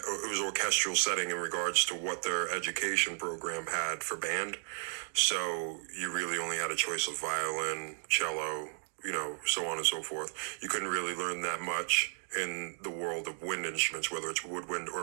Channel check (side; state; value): left; silent; digital silence